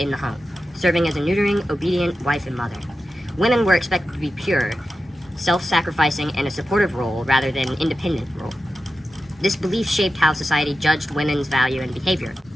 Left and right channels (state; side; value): normal; both; correlation 0.92